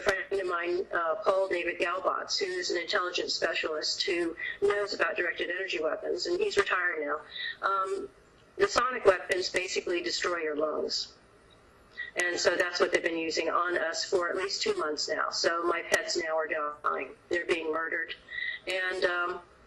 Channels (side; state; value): both; identical; correlation 1.00